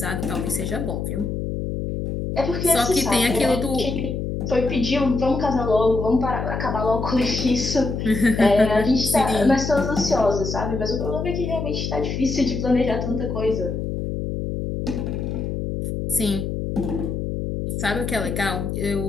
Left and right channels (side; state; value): left; noise; hum, 3 dB below the sound